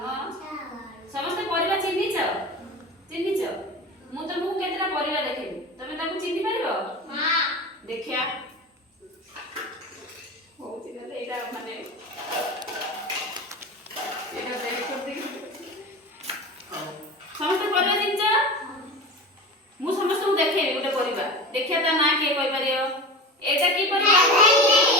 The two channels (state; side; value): normal; both; correlation 0.30